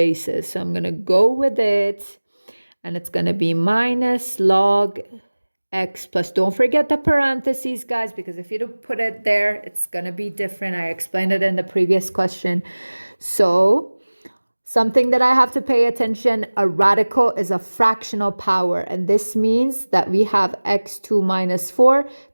So I'm going to go with it, and it's going to be minus log x plus, don't forget the parentheses, guys, because if you don't put it there, it's going to be different. I explained it in the previous question. So something that I have to pay attention, a radical is a fractional power. And this means that we have x2 minus 4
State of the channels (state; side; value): inverted; both; correlation -1.00